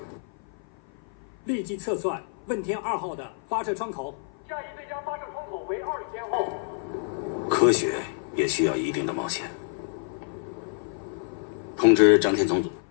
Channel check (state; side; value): silent; right; 55 dB below the other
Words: 立即测算问天2号的发射窗口，下一最佳发射窗口为20天后。科学也需要一定的冒险。通知张天总组，